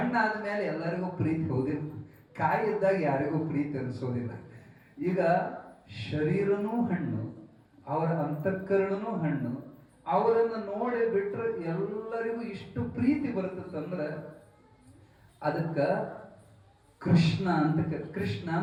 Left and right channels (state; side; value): identical; both; correlation 1.00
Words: ಎಲ್ಲರಿಗೂ ಪ್ರೀತಿ ಹೋದಿಲ್ಲ. ಕಾಯಿ ಇದ್ದಾಗ ಯಾರಿಗೂ ಪ್ರೀತಿ ಅನಿಸೋದಿಲ್ಲ. ಈಗ ಶರೀರನೂ ಹಣ್ಣು, ಅವರ ಅಂತಃಕರಣನೂ ಹಣ್ಣು. ಅವರನ್ನು ನೋಡಿ ಬಿಟ್ರೆ ಎಲ್ಲರಿಗೂ ಇಷ್ಟು ಪ್ರೀತಿ ಬರ್ತದಂದ್ರೆ ಅದಕ್ಕ ಕೃಷ್ಣ ಅಂತ. ಕೃಷ್ಣ